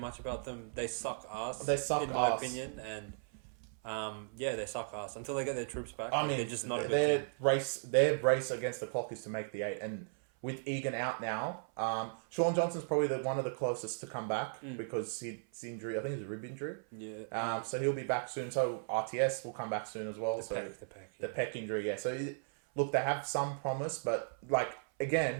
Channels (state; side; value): silent; left; 54 dB below the other